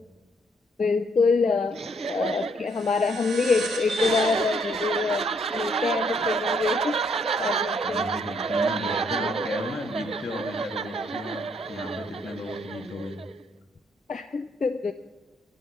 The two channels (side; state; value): both; normal; correlation 0.69